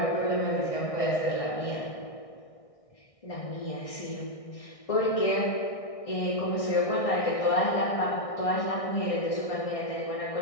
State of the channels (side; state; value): right; late; 1.6 ms